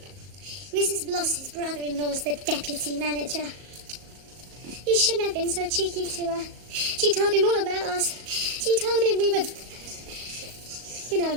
Mrs. Bloss's brother-in-law's the deputy manager. You shouldn't have been so cheeky to her. She told him all about us. She told him we were... You know...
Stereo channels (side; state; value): left; late; 38 ms